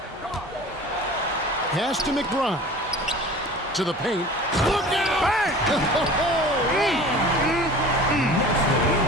Pass to McBride. To the paint. Look out! Bang!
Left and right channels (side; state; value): both; normal; correlation 0.41